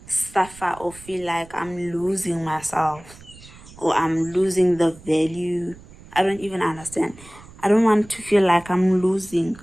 suffer or feel like I'm losing myself or I'm losing the value. I don't even understand. I don't want to feel like I'm losing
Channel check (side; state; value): right; noise; rumble, 21 dB below the sound